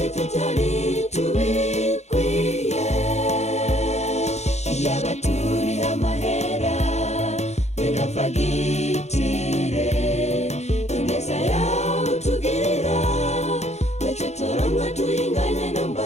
tutari tubikwiye. Yaba turi amahera benga fagitire ineza yawe utugirira ntacyo turonka tuyinganya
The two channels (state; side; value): late; right; 0.32 ms